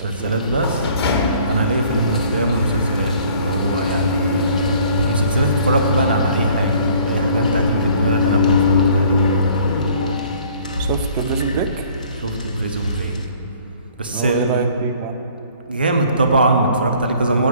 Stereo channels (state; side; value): inverted; both; correlation -0.56